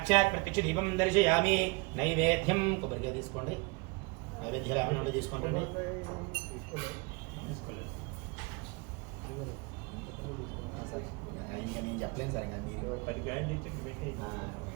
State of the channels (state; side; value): quieter; left; 28.2 dB